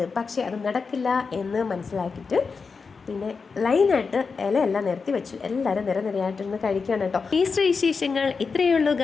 പക്ഷേ അത് നടക്കില്ല എന്ന് മനസ്സിലാക്കിയിട്ട് പിന്നെ ലൈനായിട്ട് ഇലയെല്ലാം നിരത്തി വെച്ചു. എല്ലാവരും നിരനിരയായിട്ടിരുന്ന് കഴിക്കുകയാണ് കേട്ടോ. ഈസ്റ്റർ വിശേഷങ്ങൾ ഇത്രയേ ഉള്ളൂ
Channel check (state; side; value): quieter; right; 5.0 dB